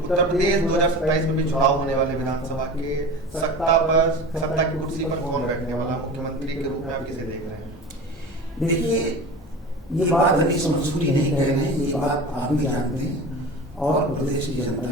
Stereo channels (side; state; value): both; normal; correlation 0.33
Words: प्रदेश 2027 में भी चुनाव होने वाले विधानसभा के, सत्ता की कुर्सी पर कौन बैठने वाला मुख्यमंत्री के रूप में आप किसे देख रहे हैं? देखिए, ये बात हनीश मंसूरी नहीं कह रहे हैं, ये बात आप भी जानते हैं और प्रदेश की जनता